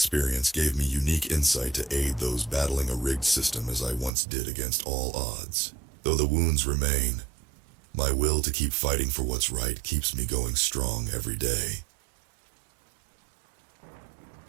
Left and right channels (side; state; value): left; drops out; at 4.1 s